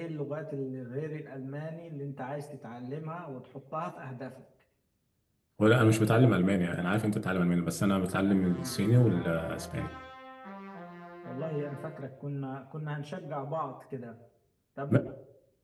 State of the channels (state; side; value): identical; both; correlation 1.00